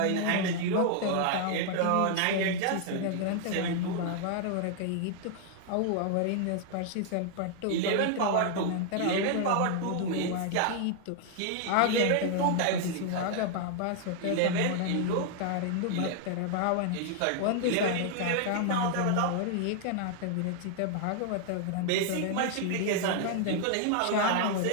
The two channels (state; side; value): different; both; correlation 0.00